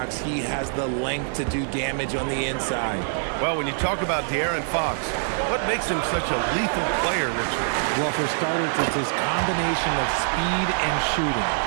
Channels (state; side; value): silent; left; 59 dB below the other